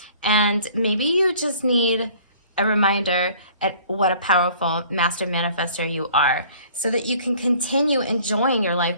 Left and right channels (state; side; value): inverted; both; correlation -0.53